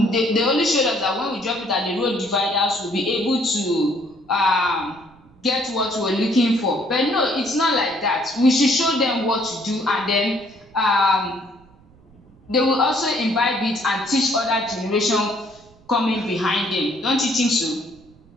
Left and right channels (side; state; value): right; noise; rumble, 28 dB below the sound